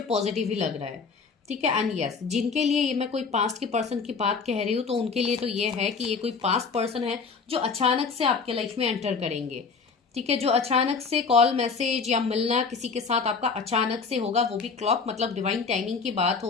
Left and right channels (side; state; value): right; quieter; 5.0 dB